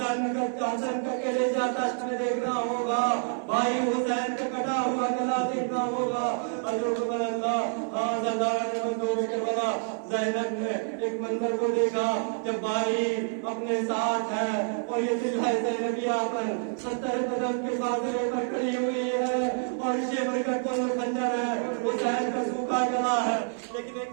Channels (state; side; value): silent; left; 57 dB below the other